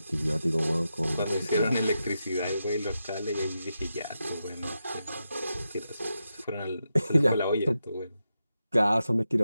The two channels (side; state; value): both; inverted; correlation -0.88